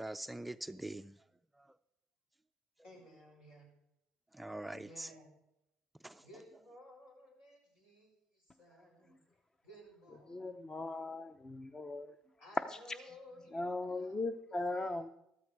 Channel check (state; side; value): normal; both; correlation 0.87